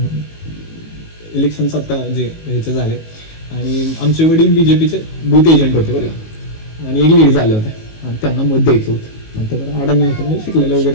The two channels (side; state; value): right; late; 19 ms